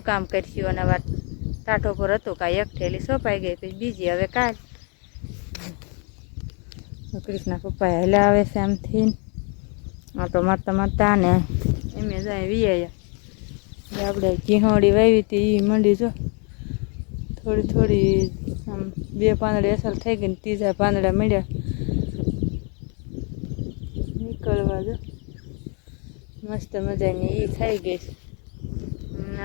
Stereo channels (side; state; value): right; quieter; 36.4 dB